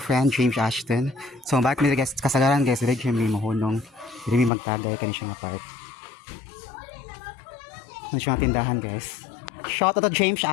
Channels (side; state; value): right; drops out; at 4.5 s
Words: James Ashton. So, back mi guys, kasagaran guys, dire mi mahunong. Dire mi magtagay kani siya nga part. Ano siya nga tindahan guys. Shout out to James